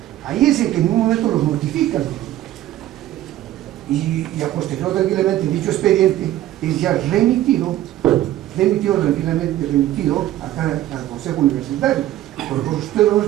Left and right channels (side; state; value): left; quieter; 13.8 dB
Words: Ahí es en que en un momento los notifican. Y a posterior tranquilamente dicho expediente es ya remitido tranquilamente acá al Consejo Universitario. Por el Consejo